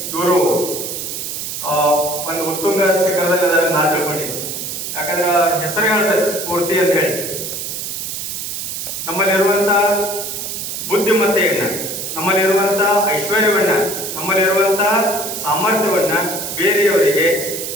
ಇವರು ಒಂದು ಉತ್ತುಂಗ ಶಿಖರದಲ್ಲಿ ಅದನ್ನ ನಾನು ತಿಳ್ಕೊಂಡಿದ್ದೆ. ಯಾಕಂದ್ರೆ ಹೆಸರು ಹೇಳ್ತಾರೆ ಸ್ಫೂರ್ತಿ ಅಂತ ಹೇಳಿ. ನಮ್ಮಲ್ಲಿರುವಂತ ಬುದ್ಧಿಮತ್ತೆಯನ್ನ, ನಮ್ಮಲ್ಲಿರುವಂತ ಐಶ್ವರ್ಯವನ್ನ, ನಮ್ಮಲ್ಲಿರುವಂತ ಸಾಮರ್ಥ್ಯವನ್ನ ಬೇರೆಯವರಿಗೆ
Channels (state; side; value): noise; right; hiss, 5 dB below the sound